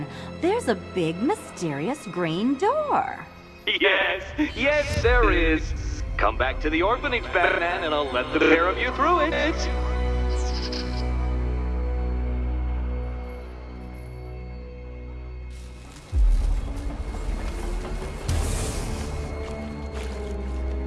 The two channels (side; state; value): both; identical; correlation 1.00